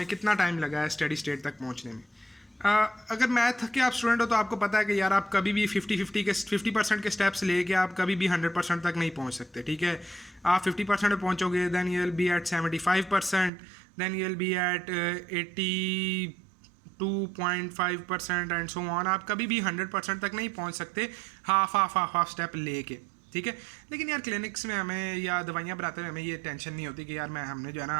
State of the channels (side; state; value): left; drops out; at 13.5 s